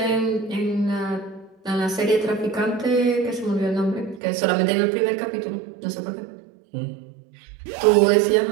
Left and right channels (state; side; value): drops out; left; at 4.2 s